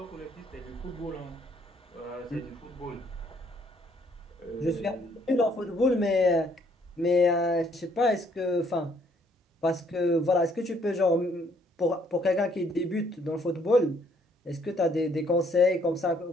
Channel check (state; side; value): normal; both; correlation 0.66